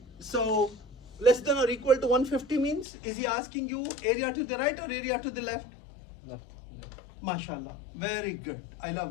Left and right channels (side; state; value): right; drops out; at 2.9 s